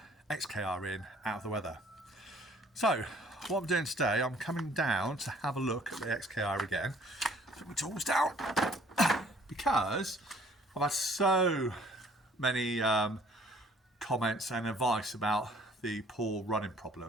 XKR in, out of the weather. So what I'm doing today, I'm coming down to have a look at the XKR again. Put my tools down because I've had so many comments and advice about the poor running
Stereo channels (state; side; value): normal; both; correlation 0.57